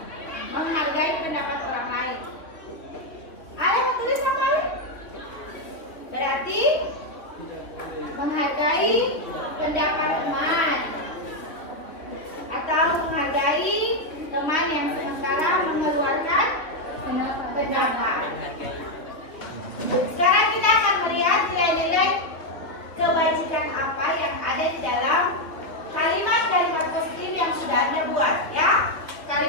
Menghargai pendapat orang lain. Ada yang mau tulis apa? Berarti menghargai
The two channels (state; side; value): late; right; 3.1 ms